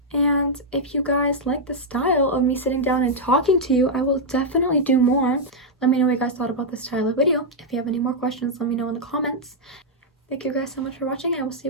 And if you guys like the style of me sitting down and talking to you, I will definitely do more. Let me know what you guys thought about this style of video. If you have any more questions, let me know in the comments. Thank you guys so much for watching, and I will see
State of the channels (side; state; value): both; normal; correlation -0.04